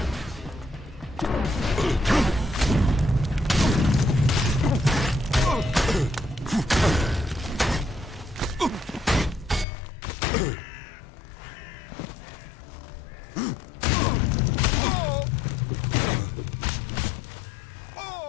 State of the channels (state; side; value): drops out; right; at 9.7 s